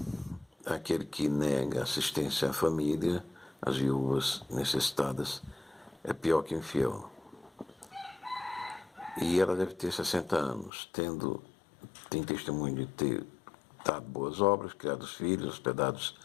aquele que nega assistência à família, às viúvas necessitadas, é pior que infiel. E ela deve ter 60 anos, tem testemunho de ter dado boas obras, criado os filhos, hospedados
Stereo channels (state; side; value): drops out; right; at 10.7 s